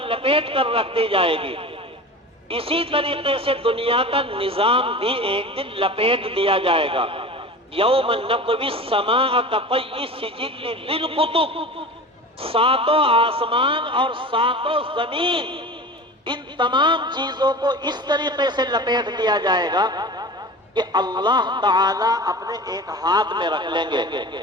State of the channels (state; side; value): normal; both; correlation 0.34